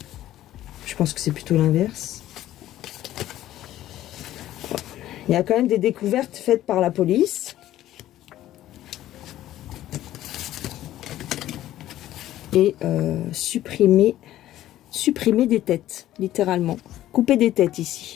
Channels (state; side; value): quieter; right; 13.6 dB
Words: Je pense que c'est plutôt l'inverse. Il y a quand même des découvertes faites par la police. Et supprimer des têtes, littéralement. Couper des têtes